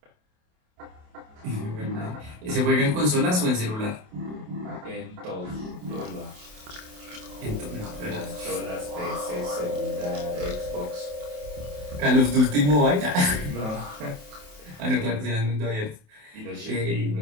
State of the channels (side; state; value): left; late; 28 ms